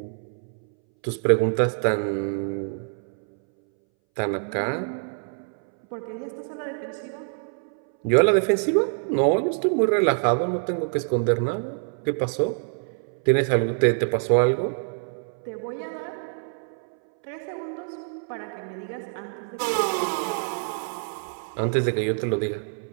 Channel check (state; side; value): silent; left; 61 dB below the other